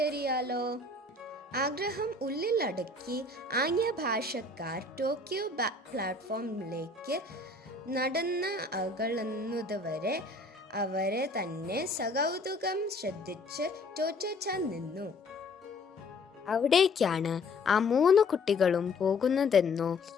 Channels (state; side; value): quieter; right; 3.1 dB